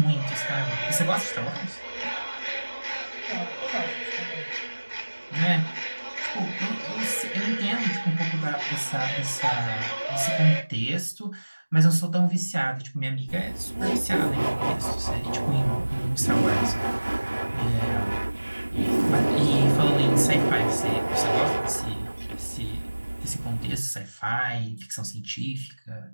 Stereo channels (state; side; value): inverted; both; correlation -1.00